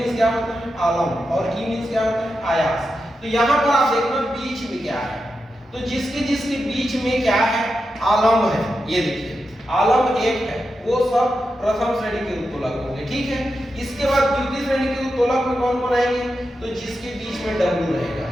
क्या होता है, आलम और ई मींस क्या होता है, आयास। तो यहाँ पर आप देखना बीच में क्या है, तो जिसके जिसके बीच में क्या है, आलम है। ये देखिए आलम एक है, वो सब प्रथम श्रेणी के उत्तोलक होंगे। ठीक है, इसके बाद द्वितीय श्रेणी के उत्तोलक में कौन कौन आएंगे, तो जिसके बीच में डब्ल्यू रहेगा।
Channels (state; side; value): normal; both; correlation 0.88